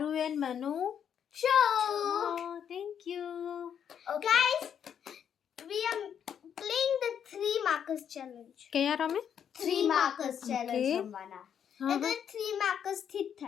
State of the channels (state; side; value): quieter; right; 8.5 dB